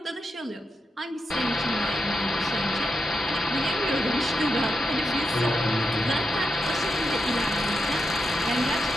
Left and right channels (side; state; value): both; normal; correlation 0.86